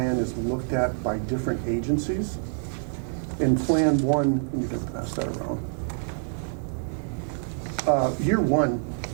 is looked at by different agencies. In Plan 1, you can pass that around. Year 1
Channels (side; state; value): left; silent; digital silence